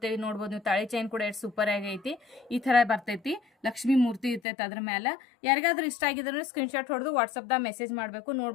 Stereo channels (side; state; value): right; drops out; at 4.4 s